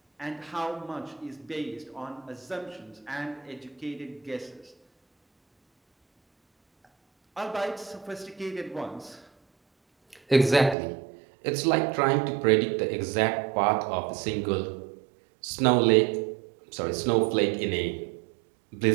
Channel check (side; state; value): left; drops out; at 10.8 s